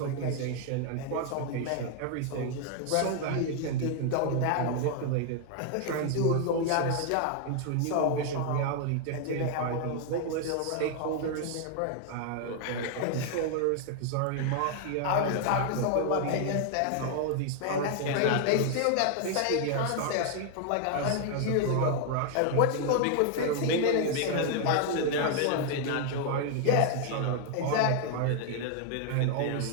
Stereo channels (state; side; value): different; both; correlation 0.00